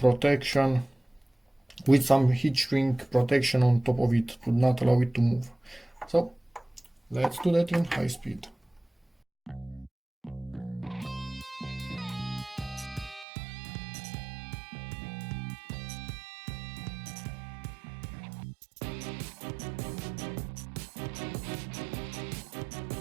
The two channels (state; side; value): drops out; left; at 13.2 s